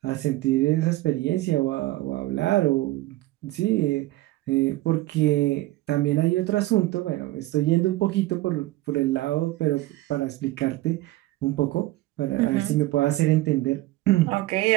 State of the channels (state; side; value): quieter; left; 17.5 dB